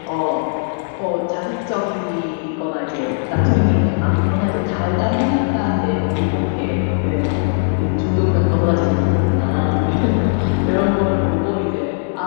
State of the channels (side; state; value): right; silent; 67 dB below the other